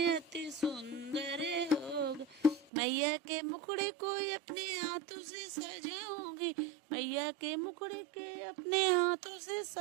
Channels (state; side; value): drops out; left; at 2.7 s